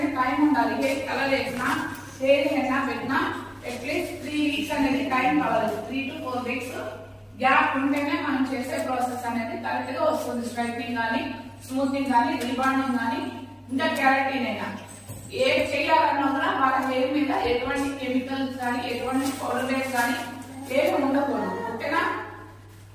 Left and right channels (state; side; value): identical; both; correlation 1.00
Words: టైం ఉండాలి. హెయిర్ కలర్ వేసినా హెయిర్ హెన్నా పెట్టినా అట్లీస్ట్ 3 వీక్స్ అనేది టైం కావాలి. 3 to 4 వీక్స్ గ్యాప్ ఉంటేనే మనం చేసే ప్రాసెస్ అనేది కరెక్ట్ గా వస్తుంది. స్ట్రైట్నింగ్ కానీ, స్మూతింగ్ కానీ, రిబాండింగ్ కానీ, ఇంకా కెరాటిన్ అయినా ఏ చేయాలన్నా కూడా వాళ్ళ హెయిర్ మీద ఎటువంటి కెమికల్స్ కానీ, ఎటువంటి పౌడర్స్ కానీ ఏమి ఉండకూడదు. ఓకేనా?